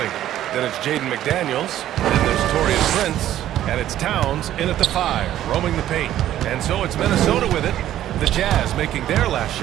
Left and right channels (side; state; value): left; quieter; 12.5 dB